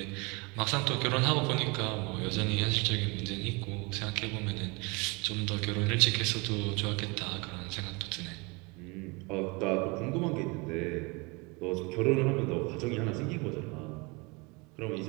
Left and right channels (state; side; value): quieter; left; 28.4 dB